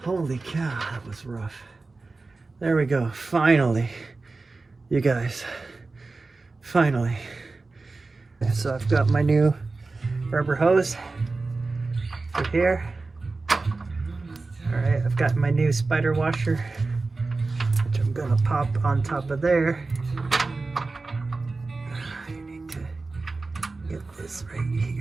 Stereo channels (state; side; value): quieter; left; 3.7 dB